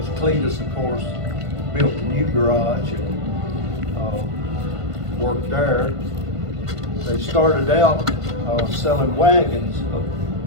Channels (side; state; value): left; late; 1.5 ms